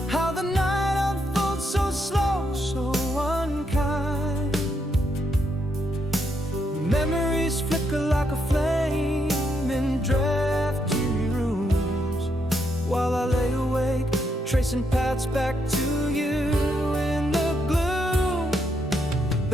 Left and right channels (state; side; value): normal; both; correlation 0.78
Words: how the night unfolds so slow, so unkind. Memories flicker like a flame in drafty rooms, while I lay awake, tracing paths back to you in the gloom.